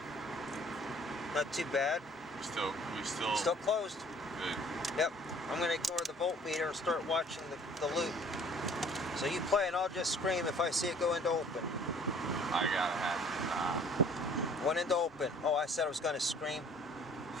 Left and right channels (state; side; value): normal; both; correlation 0.53